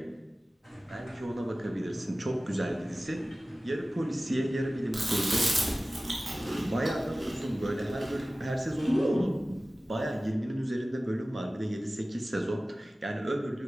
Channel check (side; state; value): both; normal; correlation 0.97